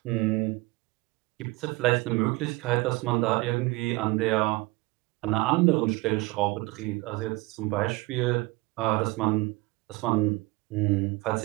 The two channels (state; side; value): quieter; left; 22.9 dB